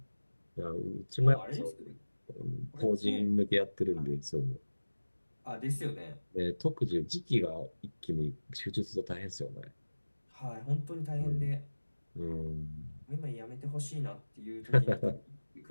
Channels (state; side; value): inverted; both; correlation -1.00